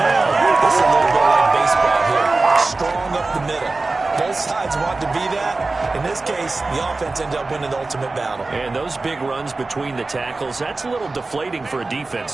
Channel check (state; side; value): quieter; left; 3.5 dB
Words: This is a little bit like baseball here. Strong up the middle. Both sides want to be that. In this case, the offense ended up winning the ultimate battle. And those big runs between the tackles, that's a little deflating for a